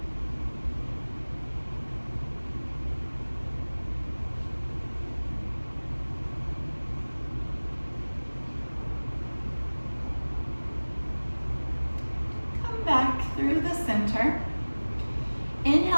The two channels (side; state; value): both; inverted; correlation -1.00